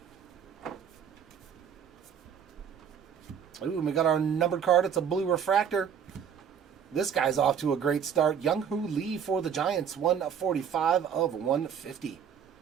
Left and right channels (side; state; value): left; quieter; 7.9 dB